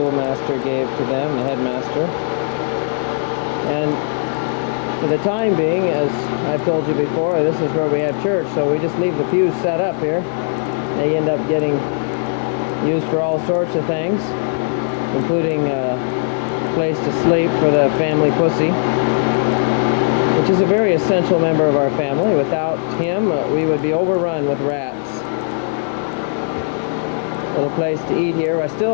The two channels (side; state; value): right; silent; digital silence